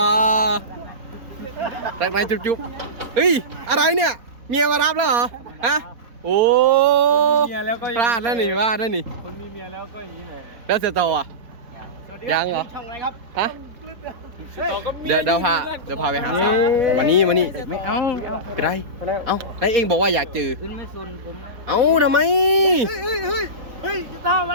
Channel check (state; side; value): late; left; 4.2 ms